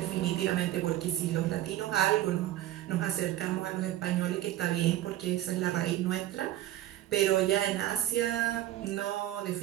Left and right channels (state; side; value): quieter; left; 13.9 dB